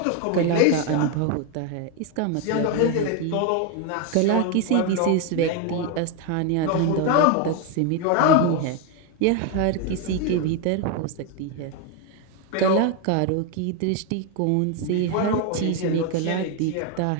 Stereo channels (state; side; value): different; both; correlation 0.01